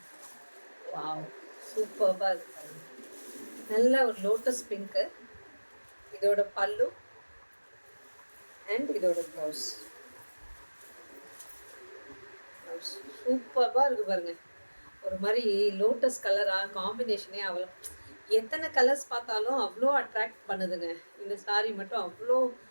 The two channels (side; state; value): both; inverted; correlation -1.00